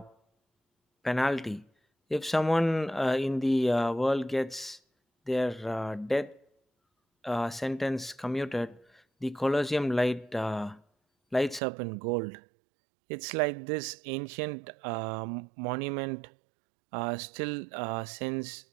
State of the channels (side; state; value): left; drops out; at 11.6 s